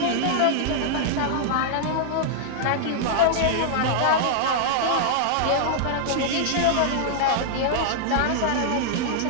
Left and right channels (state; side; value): different; both; correlation -0.01